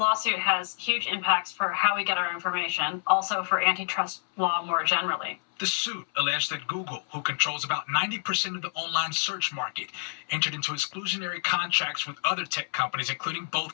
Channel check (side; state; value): right; silent; 59 dB below the other